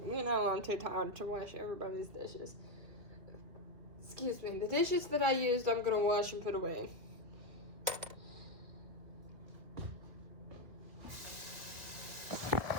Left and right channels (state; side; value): late; left; 2.5 ms